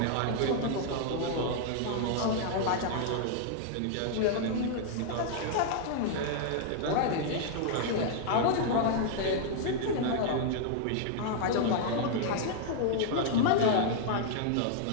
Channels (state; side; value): different; both; correlation -0.01